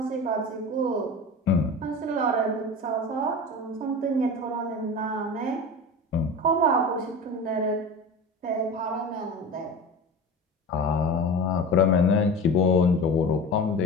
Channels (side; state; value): both; normal; correlation 0.31